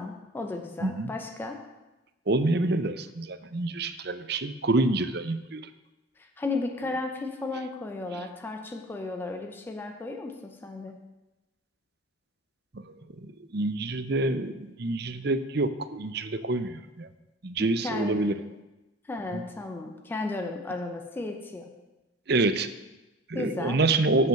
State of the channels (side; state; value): both; normal; correlation 0.43